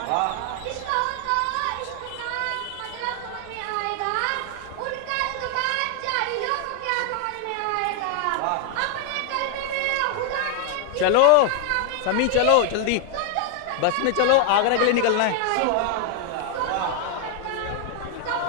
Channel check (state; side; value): different; both; correlation 0.00